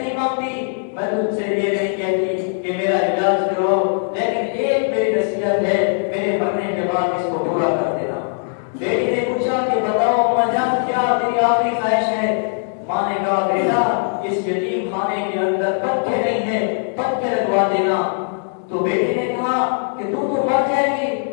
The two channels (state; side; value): silent; right; digital silence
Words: مانگتی، میں تجھ سے یہ نہیں کہتی کہ میرا علاج کرو، لیکن ایک میری نصیحت ہے، میرے مرنے کے بعد اس کو پورا کر دینا۔ بیٹی نے پوچھا کہ بتاؤ اماں جان کیا تیری آخری خواہش ہے؟ ماں نے کہا بیٹا اس یتیم خانے کے اندر پتھر نہیں ہے، پتھر لگوا دینا۔ تو بیٹے نے کہا کہ تو مر جائے گی،